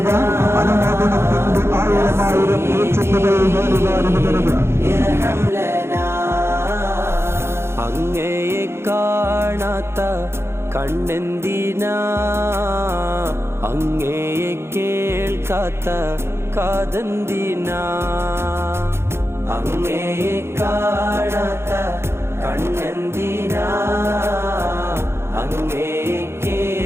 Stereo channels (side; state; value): left; late; 0.12 ms